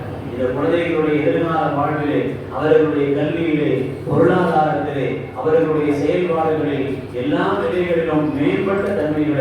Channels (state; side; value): identical; both; correlation 1.00